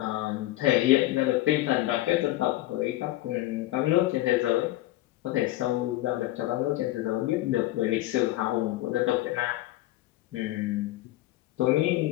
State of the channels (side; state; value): right; quieter; 16.6 dB